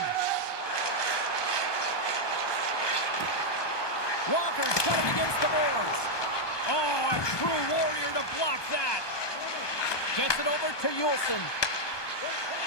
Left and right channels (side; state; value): right; late; 1.2 ms